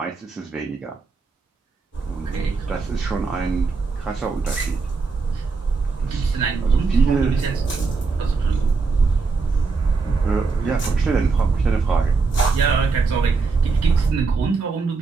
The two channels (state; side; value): quieter; left; 4.5 dB